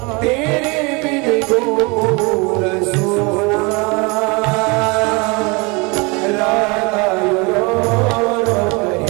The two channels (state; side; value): quieter; left; 28.2 dB